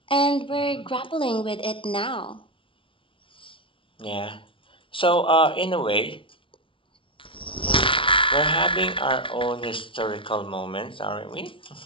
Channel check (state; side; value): late; right; 0.25 ms